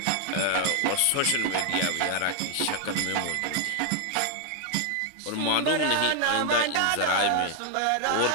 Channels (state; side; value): different; both; correlation 0.00